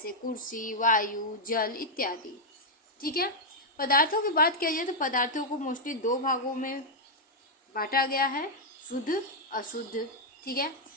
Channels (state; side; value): normal; both; correlation -0.02